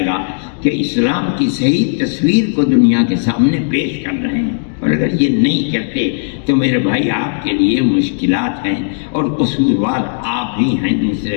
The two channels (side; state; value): right; silent; digital silence